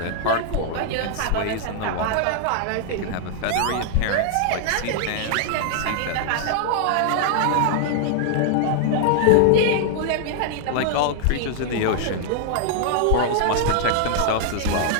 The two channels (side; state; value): both; different; correlation 0.00